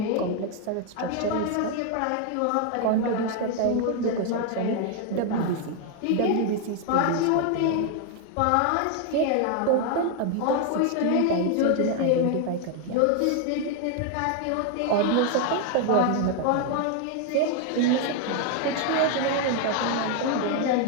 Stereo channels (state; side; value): different; both; correlation 0.00